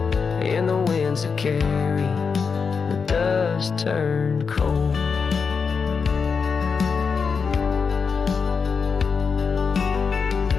in the winds that carry the dust turned cold.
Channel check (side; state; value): right; quieter; 5.5 dB